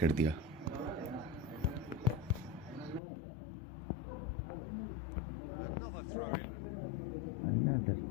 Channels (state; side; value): drops out; right; at 3.0 s